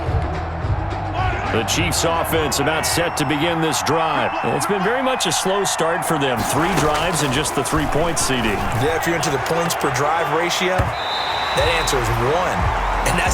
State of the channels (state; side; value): identical; both; correlation 1.00